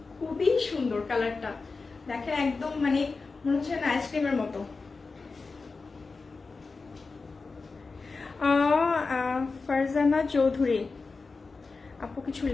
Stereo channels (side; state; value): right; quieter; 4.2 dB